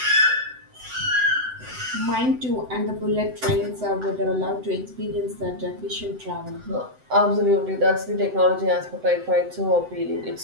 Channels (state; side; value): late; left; 7.8 ms